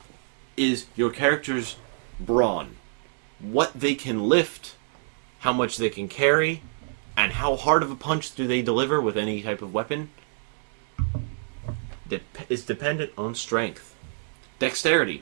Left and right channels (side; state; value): left; silent; digital silence